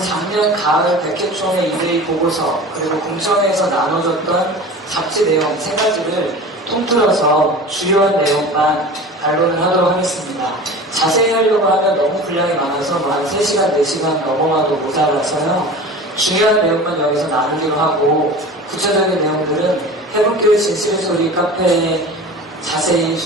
작년 가을 백회총회 이대위 보고서, 그리고 공청회에서 나눠졌던 잡지 내용 세 가지를 통틀어서 주요한 내용만 반론을 하도록 하겠습니다. 자세히 하려고 하면 너무 분량이 많아서 한 3시간, 4시간 넘어가도 모자라서요. 중요한 내용만 여기서 나누기로 하고 구체적인 내용들은 해본교회 진실의 소리 카페에 자세히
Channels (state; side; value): normal; both; correlation 0.37